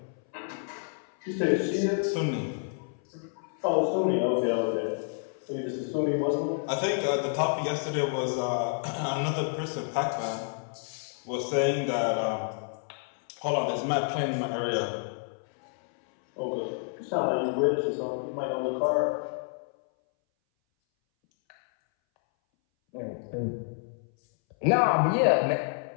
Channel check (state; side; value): silent; right; 59 dB below the other